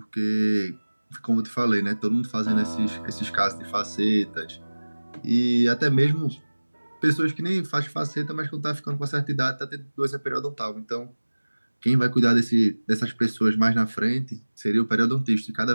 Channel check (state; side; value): inverted; both; correlation -1.00